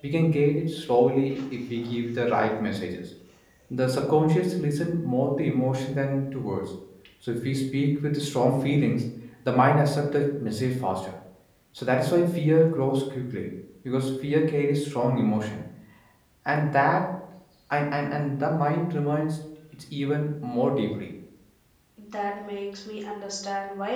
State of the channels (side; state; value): both; identical; correlation 1.00